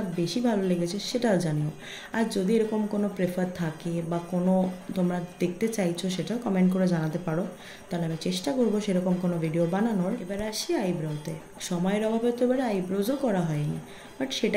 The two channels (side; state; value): both; identical; correlation 1.00